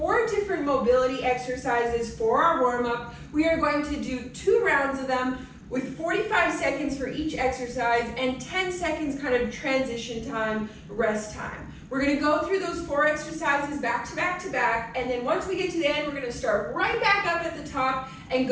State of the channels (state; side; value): identical; both; correlation 1.00